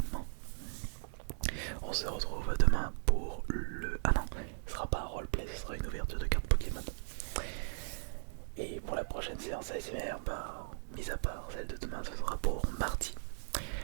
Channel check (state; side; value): silent; left; digital silence